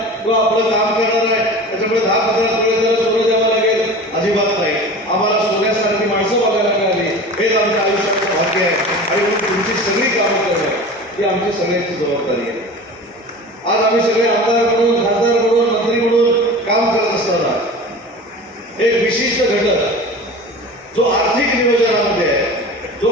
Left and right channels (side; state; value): both; normal; correlation 0.35